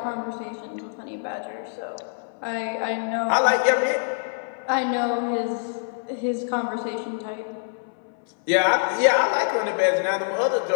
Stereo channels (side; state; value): right; silent; 62 dB below the other